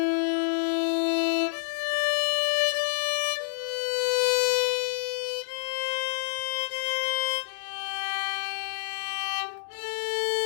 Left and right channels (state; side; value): silent; right; digital silence